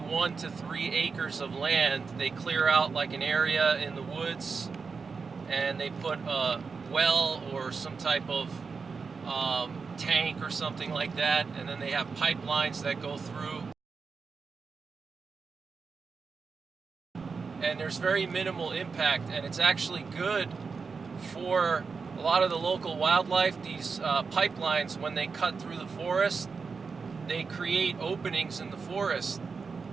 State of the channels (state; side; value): quieter; left; 5.0 dB